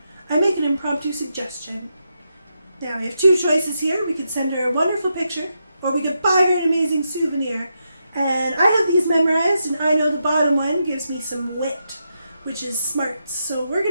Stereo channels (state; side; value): inverted; both; correlation -0.84